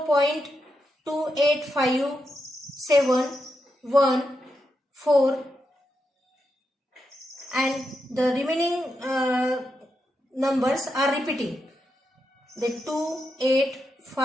and the remaining numbers are repeating. The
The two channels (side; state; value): both; normal; correlation 0.85